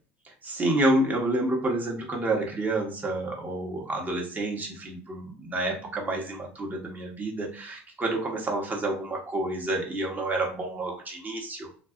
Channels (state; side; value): normal; both; correlation 0.56